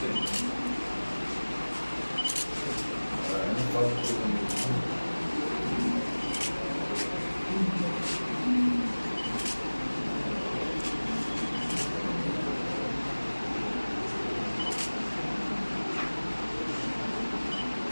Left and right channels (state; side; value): inverted; both; correlation -1.00